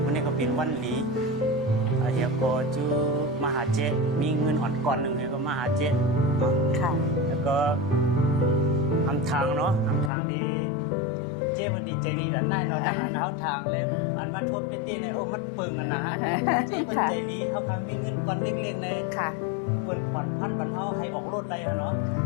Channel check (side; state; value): right; drops out; at 10.1 s